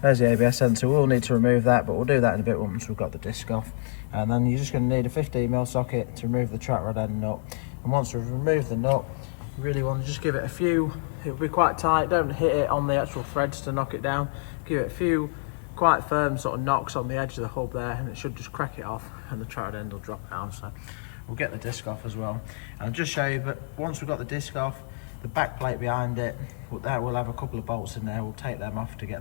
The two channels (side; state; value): right; silent; digital silence